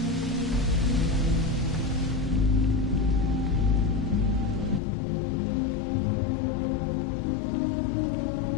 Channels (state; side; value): drops out; right; at 4.8 s